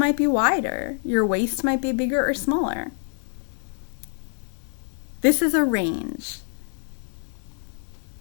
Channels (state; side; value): silent; right; digital silence